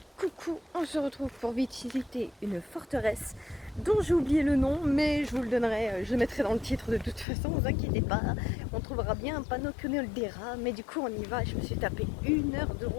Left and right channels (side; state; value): right; drops out; at 7.2 s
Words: coucou, on se retrouve pour visiter une forteresse dont j'ai oublié le nom, mais je vous le donnerai, je le mettrai dans le titre de toute façon, ne vous inquiétez pas. On trouvera bien un panneau que nous le dira, mais du coup on y va. Je me suis tapé 1 heure de